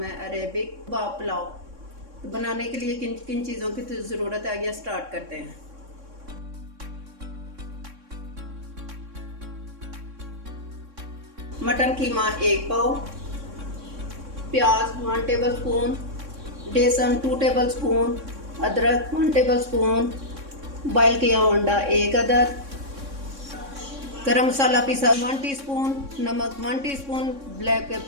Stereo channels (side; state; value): left; late; 3.6 ms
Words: है अरेबिक कबाब पुलाव। तो बनाने के लिए किन किन चीज़ों की ज़रूरत है, आइए स्टार्ट करते हैं। मटन कीमा 1 पाव, प्याज 1 टेबल स्पून, बेसन 2 टेबल स्पून, अदरक 1 टेबल स्पून, बॉयल किया अंडा 1 अदद, गरम मसाला पीसा 1 टीस्पून, नमक 1 टीस्पून, ब्लैक